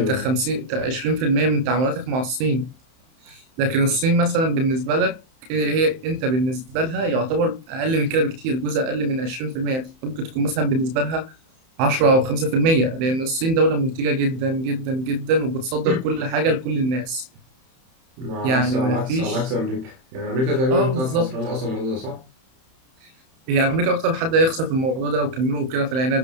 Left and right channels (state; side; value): late; left; 31 ms